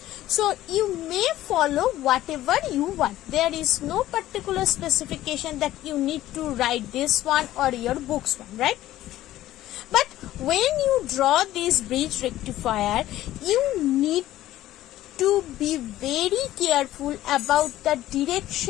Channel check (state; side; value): quieter; right; 14.5 dB